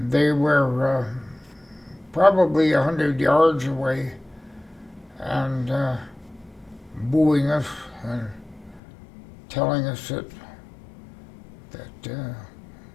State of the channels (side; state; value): right; drops out; at 8.8 s